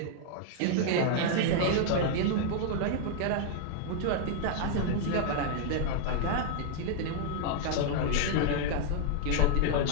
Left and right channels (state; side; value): different; both; correlation -0.01